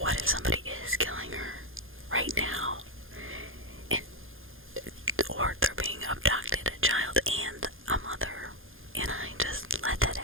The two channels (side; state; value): left; late; 0.60 ms